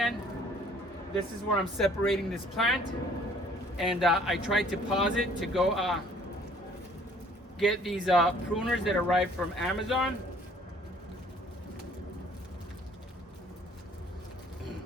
This is where I'm separating this plant. And I tried to pause it to go get these pruners that arrived from Amazon.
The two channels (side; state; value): both; normal; correlation 0.57